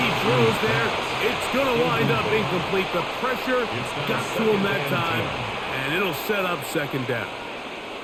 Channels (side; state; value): both; identical; correlation 1.00